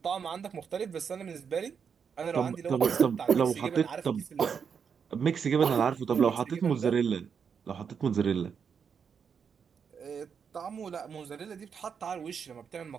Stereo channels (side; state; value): left; quieter; 6.7 dB